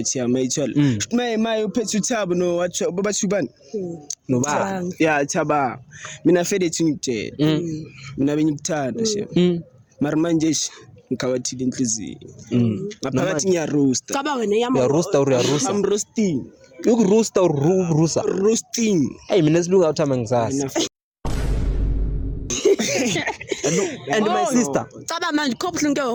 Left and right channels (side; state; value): both; identical; correlation 1.00